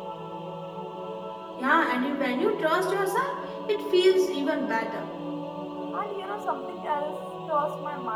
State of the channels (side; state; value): both; identical; correlation 1.00